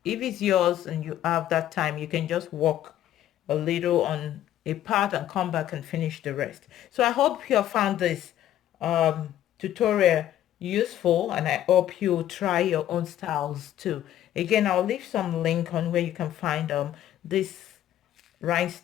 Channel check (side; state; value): right; quieter; 12.1 dB